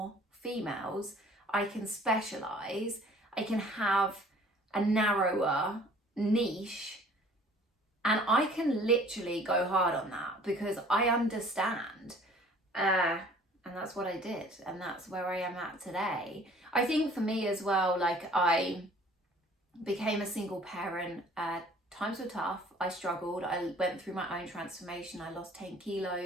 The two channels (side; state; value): both; normal; correlation 0.52